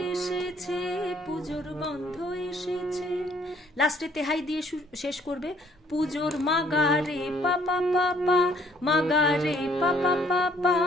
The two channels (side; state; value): both; normal; correlation 0.62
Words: এসেছে, পুজোর গন্ধ এসেছে। লাস্টে তেহাই দিয়ে শেষ করবে। পুজোর মাগা রে পা পা পা পা, মাগা রে পা পা পা পা,